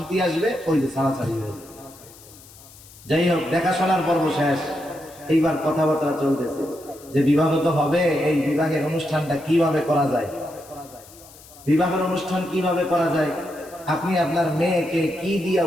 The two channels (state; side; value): noise; left; hiss, 22 dB below the sound